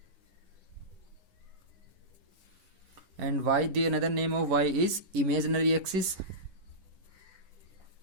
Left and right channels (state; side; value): late; left; 11 ms